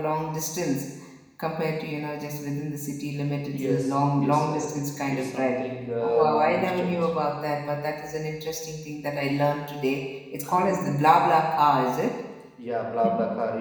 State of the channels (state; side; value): identical; both; correlation 1.00